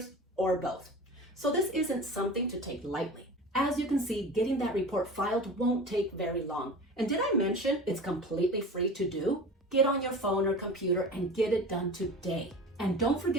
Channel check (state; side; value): normal; both; correlation 0.35